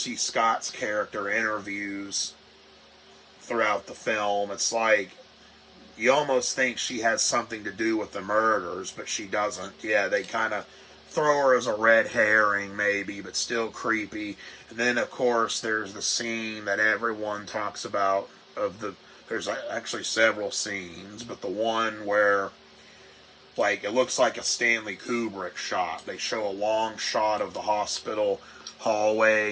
Scott's character interviews throughout the film. It's like, you almost think she has something to do with the murders, but she doesn't. Yeah, they kind of throw her as a red herring maybe, but still creepy. And then of course there's the scene that everyone talks about there's actually several scenes, but the one where, like, it looks like a Stanley Kubrick shot. They show a long shot of the hospital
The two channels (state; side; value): identical; both; correlation 1.00